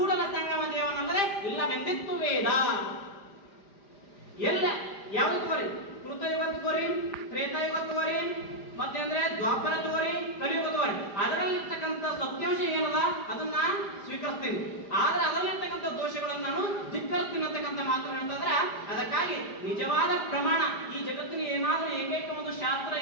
ಸಂಗಮ ದೇವನಲ್ಲದೆ ಇಲ್ಲವೆಂದಿತ್ತು ವೇದ. ಎಲ್ಲ ಯಾವ್ದು ತಗೋರಿ? ಕೃತಯುಗ ತಗೋರಿ, ತ್ರೇತಾಯುಗ ತಗೋರಿ, ಮತ್ತೆ ಅಂದ್ರೆ ದ್ವಾಪರ ತಗೋರಿ, ಕಲಿಯುಗ ತಗೋರಿ. ಅದರಲ್ಲಿರ್ತಕ್ಕಂಥ ಸತ್ಯಾಂಶ ಏನದ ಅದನ್ನ ಸ್ವೀಕರಿಸ್ತೀನಿ, ಆದ್ರೆ ಅದರಲ್ಲಿರ್ತಕ್ಕಂಥ ದೋಷಗಳನ್ನು ನಾನು ಧಿಕ್ಕರಿಸ್ತೀನಿ ಅಂತಕ್ಕಂಥ ಮಾತು ಅಂತಂದ್ರೆ, ಅದಕ್ಕಾಗಿ ನಿಜವಾದ ಪ್ರಮಾಣ ಈ ಜಗತ್ತಿನ ಏನಾದ್ರೂ ಏಕೈಕ ಒಂದು ಶಾಸ್ತ್ರ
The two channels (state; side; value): late; right; 5.0 ms